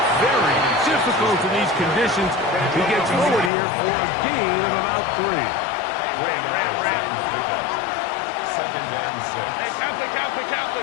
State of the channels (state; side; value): drops out; right; at 3.5 s